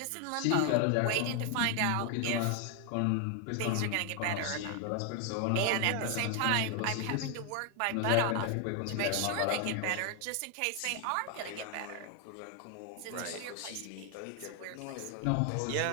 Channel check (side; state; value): both; different; correlation 0.00